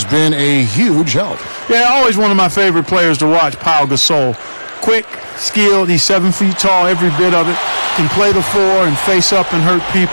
been a huge help. Yeah, always one of my favorite players to watch, Pau Gasol. Quick, skilled, he's 7 feet tall, every bit of it. Can play the floor and face up and hurt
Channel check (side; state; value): both; inverted; correlation -1.00